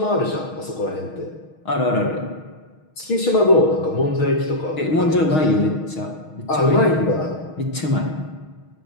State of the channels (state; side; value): late; right; 6.4 ms